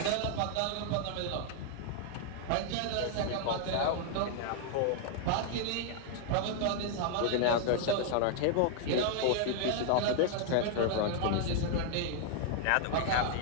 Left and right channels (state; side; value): different; both; correlation 0.00